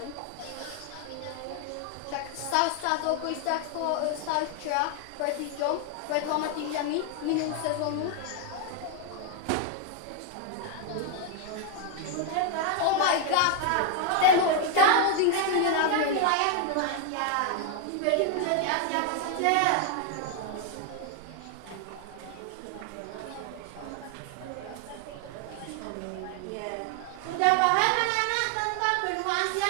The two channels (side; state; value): both; different; correlation 0.00